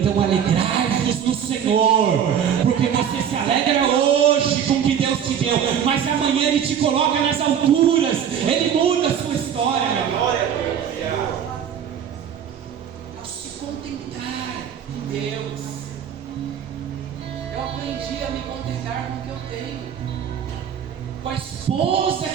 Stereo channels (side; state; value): left; quieter; 8.6 dB